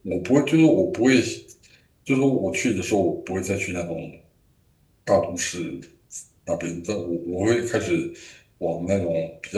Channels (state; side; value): identical; both; correlation 1.00